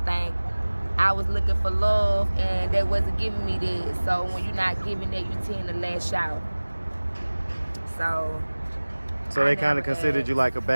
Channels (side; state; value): both; inverted; correlation -1.00